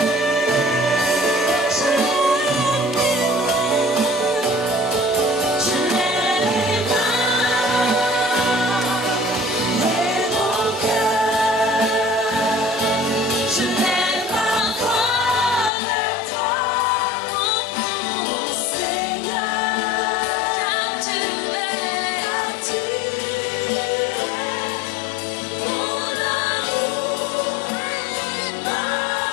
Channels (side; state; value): right; drops out; at 15.7 s